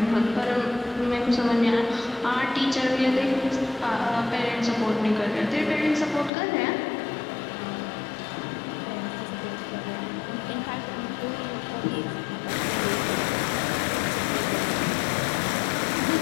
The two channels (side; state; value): right; drops out; at 6.3 s